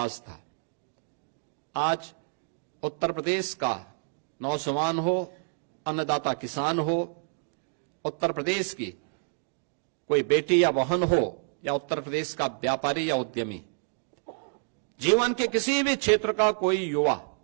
था। आज उत्तर प्रदेश का नौजवान हो, अन्नदाता किसान हो, उत्तर प्रदेश की कोई बेटी या बहन हो या उत्तर प्रदेश का व्यापारी या उद्यमी, जीवन के किसी भी क्षेत्र का कोई युवा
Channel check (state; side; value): silent; left; digital silence